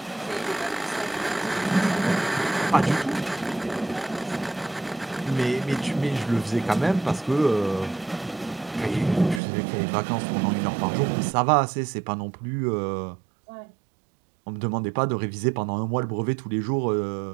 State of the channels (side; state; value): left; drops out; at 9.4 s